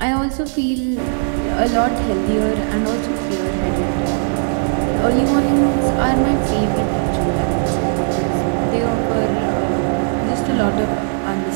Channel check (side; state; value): left; silent; 66 dB below the other